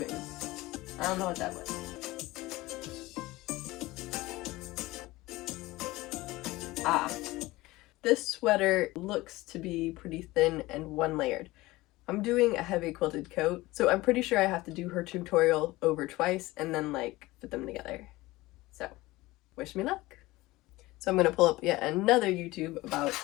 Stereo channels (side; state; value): right; quieter; 19.5 dB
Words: I don't know what that was. This sweater looks to be pretty thin and one layered. I'm doing a heavy quilted coat, so I'm pretty sure I have to do her tutorial over twice and then like put them together. So, wish me luck. So I'm gonna pull up yet another YouTube about